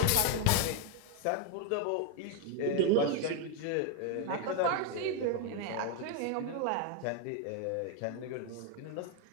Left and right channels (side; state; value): both; different; correlation 0.01